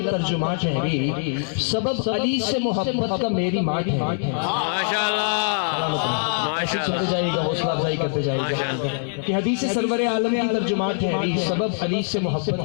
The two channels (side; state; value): right; silent; digital silence